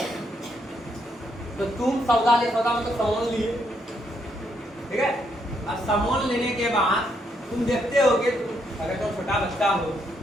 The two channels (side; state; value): both; normal; correlation 0.75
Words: तो तुम सौदा में तो सामान लिए, ठीक है। अब सामान लेने के बाद तुम देखते होगे, अगर तुम छोटा बच्चा हो,